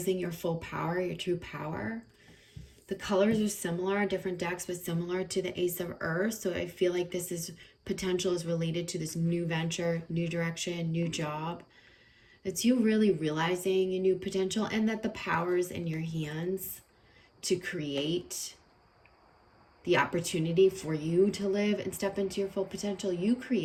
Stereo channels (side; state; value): both; identical; correlation 1.00